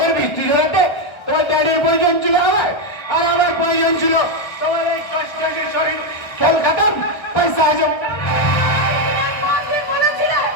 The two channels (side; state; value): right; late; 1.4 ms